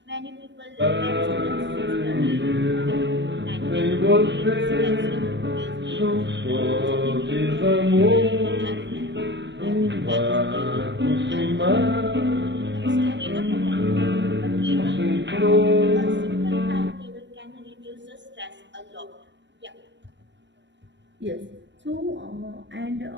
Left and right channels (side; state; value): left; late; 0.53 ms